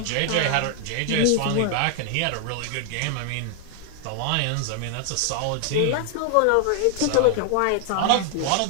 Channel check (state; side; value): different; both; correlation 0.00